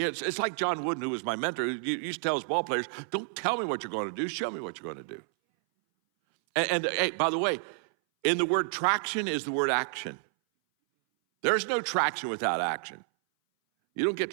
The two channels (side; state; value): left; silent; 58 dB below the other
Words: like John Wooden, who was my mentor, who used to tell his ball players, don't tell me what you're going to do, show me what you're going to do. And hey, by the way, in the word traction is the word action. There's no traction without action. You don't get